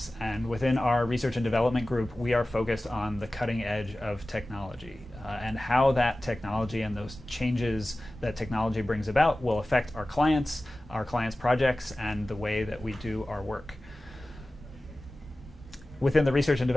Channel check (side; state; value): both; normal; correlation 0.96